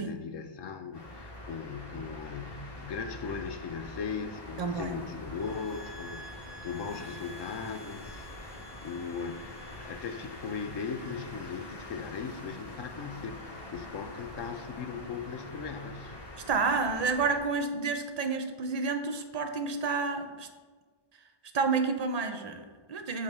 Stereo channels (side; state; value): right; late; 1.2 ms